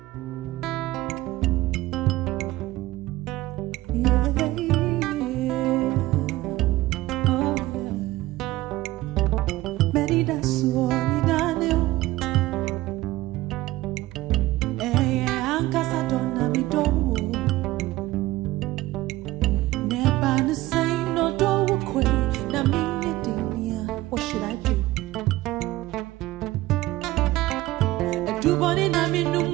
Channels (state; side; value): quieter; left; 17.6 dB